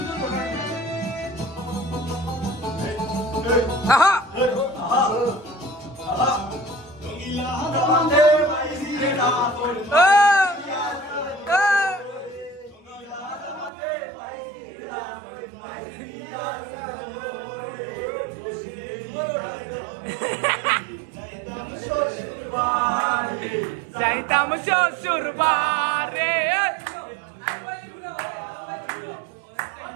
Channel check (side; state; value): left; drops out; at 13.7 s